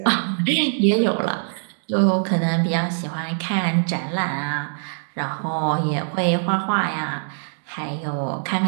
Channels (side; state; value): left; silent; digital silence